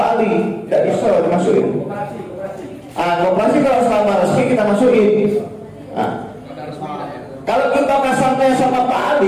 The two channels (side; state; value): both; identical; correlation 1.00